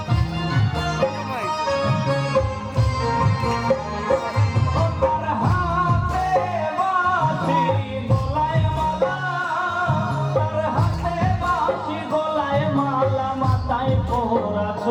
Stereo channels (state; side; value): identical; both; correlation 1.00